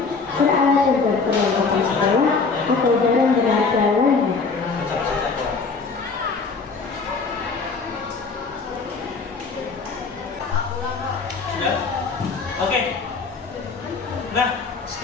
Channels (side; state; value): right; quieter; 4.6 dB